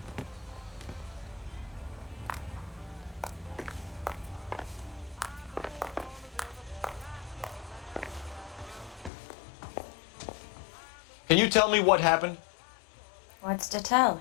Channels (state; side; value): drops out; right; at 9.1 s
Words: Can you tell me what happened? What's to tell?